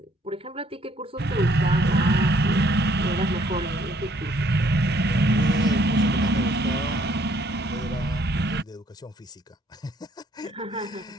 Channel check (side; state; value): both; normal; correlation 0.65